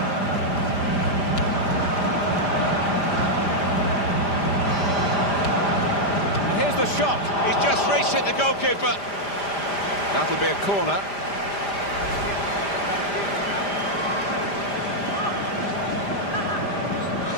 The shot. He's just reached it, the goalkeeper. That'll be a corner.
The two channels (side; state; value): right; late; 5.0 ms